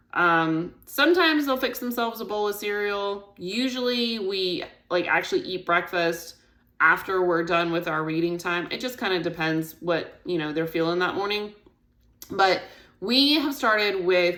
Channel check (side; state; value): both; identical; correlation 1.00